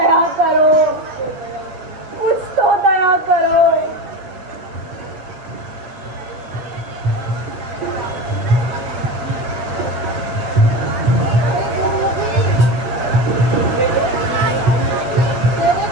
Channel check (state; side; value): late; left; 8.0 ms